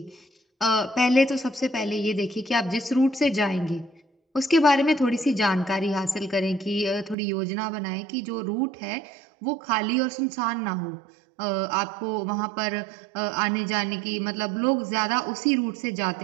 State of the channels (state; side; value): drops out; left; at 7.2 s